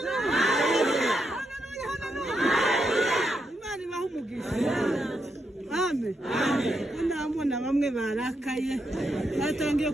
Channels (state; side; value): normal; both; correlation 0.82